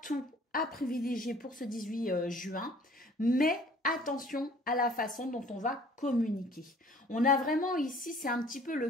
à privilégier pour ce 18 juin, mais attention à la façon dont on va communiquer. On a vraiment ici, c'est un petit peu le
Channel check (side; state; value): both; normal; correlation 0.53